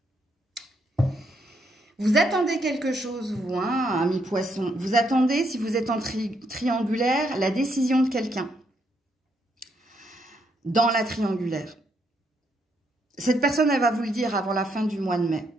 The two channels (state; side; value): normal; both; correlation 0.75